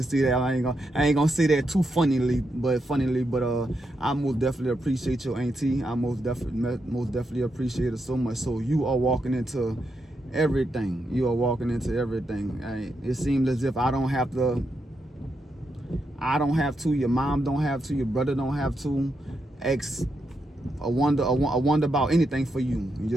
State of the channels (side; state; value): both; normal; correlation 0.83